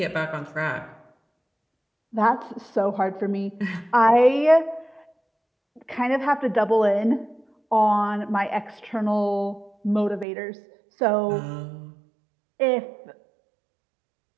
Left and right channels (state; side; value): drops out; left; at 10.2 s